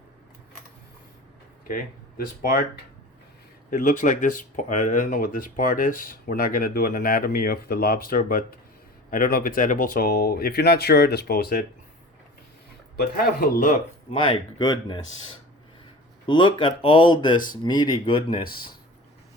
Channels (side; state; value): both; normal; correlation 0.38